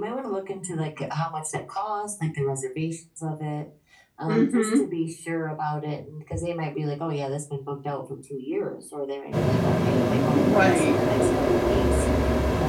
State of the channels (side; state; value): both; identical; correlation 1.00